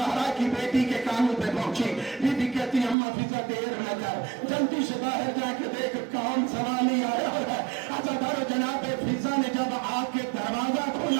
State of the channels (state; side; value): drops out; left; at 3.0 s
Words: کی بیٹی کے کانوں پہ پہنچی، بی بی کہتی اماں فضہ دیر نہ کر، جلدی سے باہر جا کے دیکھ کون سوالی آیا ہے۔ جناب فضہ نے جب آ کے دروازہ